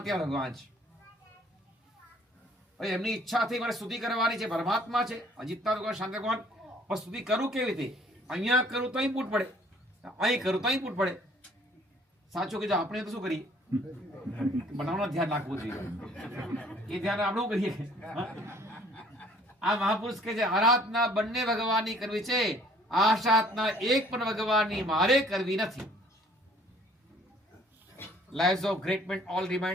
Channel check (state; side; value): normal; both; correlation 0.57